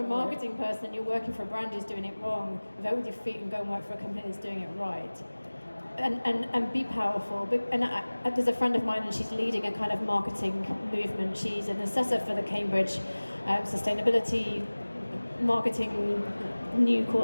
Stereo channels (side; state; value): both; inverted; correlation -1.00